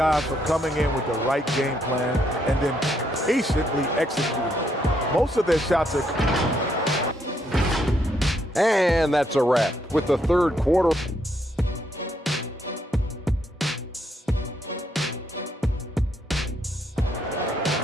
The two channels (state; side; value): normal; both; correlation 0.74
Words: for coming in with the right game plan and then patiently executing. Most of their shots are... And that's a wrap with the third quarter.